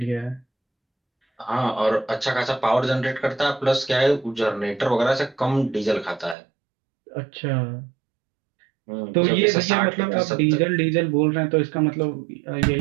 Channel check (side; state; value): left; drops out; at 6.4 s